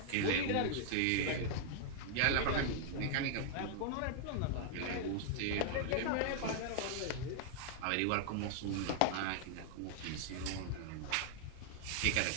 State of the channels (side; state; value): both; different; correlation -0.01